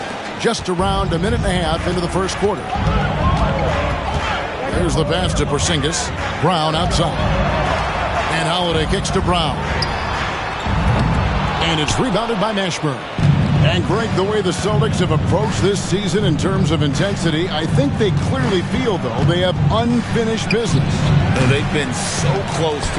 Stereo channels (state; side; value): identical; both; correlation 1.00